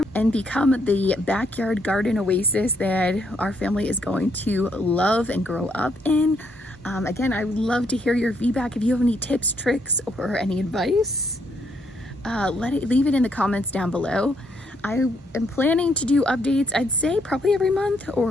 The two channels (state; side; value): normal; both; correlation 0.74